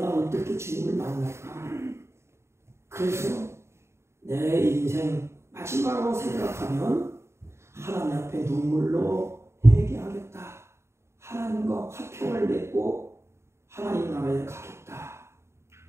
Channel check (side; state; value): left; late; 0.13 ms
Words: 어떻게 주님을 만날까? 그래서 내 인생 마지막으로 생각하면 하나님 앞에 눈물로 회개하겠다. 하나님과 화평을 맺고 하나님 나라에 가겠다.